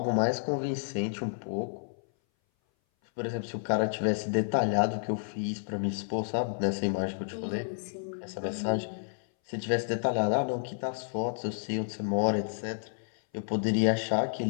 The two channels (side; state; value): right; silent; 57 dB below the other